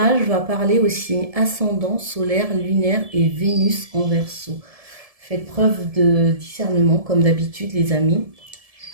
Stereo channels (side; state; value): left; late; 1.7 ms